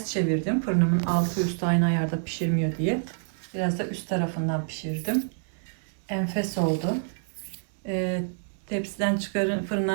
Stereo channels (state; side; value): silent; left; digital silence